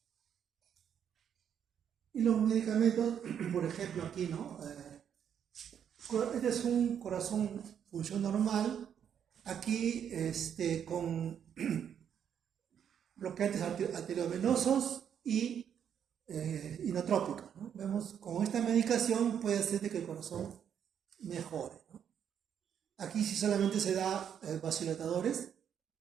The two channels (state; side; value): quieter; left; 8.5 dB